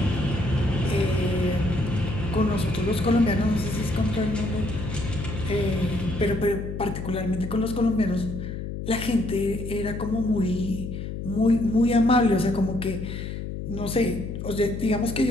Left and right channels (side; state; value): left; noise; hum, 6 dB below the sound